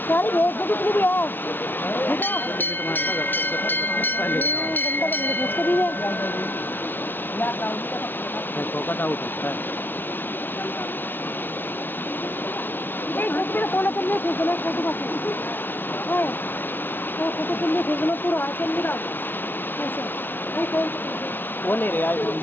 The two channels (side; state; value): right; late; 0.096 ms